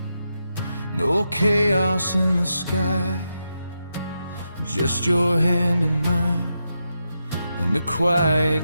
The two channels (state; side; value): inverted; both; correlation -0.86